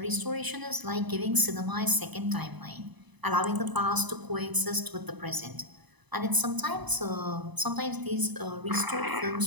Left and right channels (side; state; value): left; late; 1.0 ms